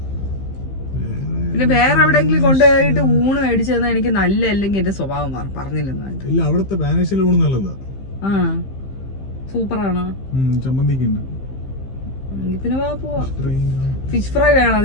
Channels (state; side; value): late; right; 15 ms